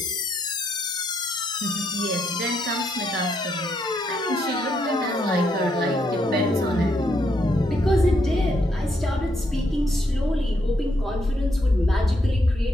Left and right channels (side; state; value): both; normal; correlation 0.76